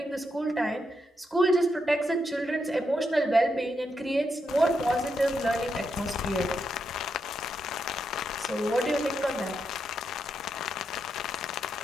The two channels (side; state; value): both; normal; correlation 0.82